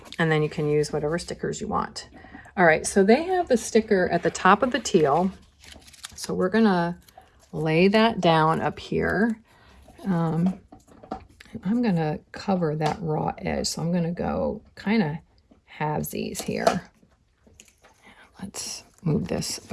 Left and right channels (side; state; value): both; identical; correlation 1.00